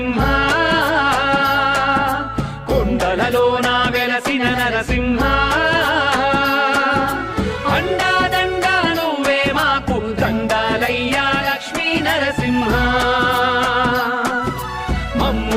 కొండలలోన వెలసిన నరసింహ, అండాదండా నువ్వే మాకు దండాలయ్యా లక్ష్మీ నరసింహ.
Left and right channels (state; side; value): identical; both; correlation 1.00